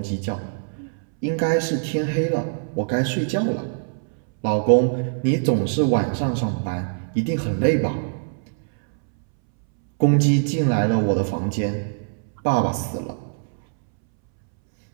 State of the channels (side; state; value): left; silent; 63 dB below the other